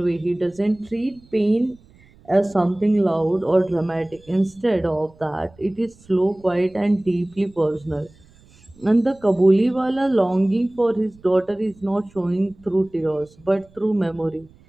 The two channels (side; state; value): right; noise; rumble, 28 dB below the sound